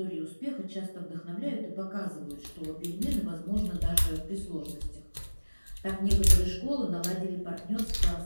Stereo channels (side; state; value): both; inverted; correlation -1.00